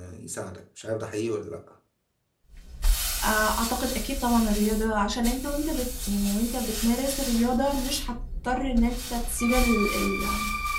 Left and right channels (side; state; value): both; identical; correlation 1.00